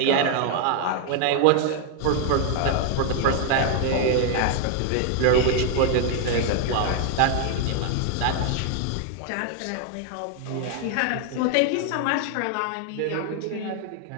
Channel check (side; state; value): both; different; correlation 0.00